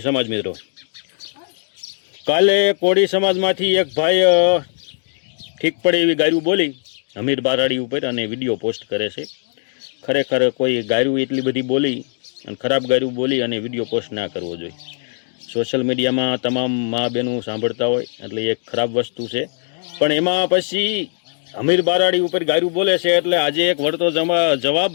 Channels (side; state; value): right; silent; digital silence